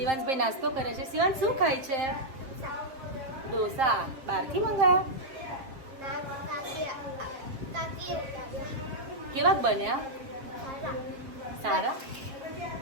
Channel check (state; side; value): late; left; 7.5 ms